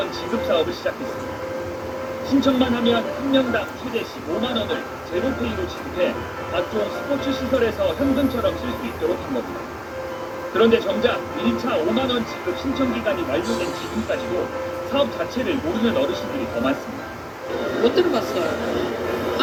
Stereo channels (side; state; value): both; identical; correlation 1.00